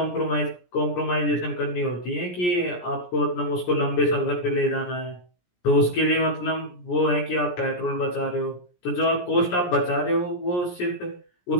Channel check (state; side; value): late; right; 17 ms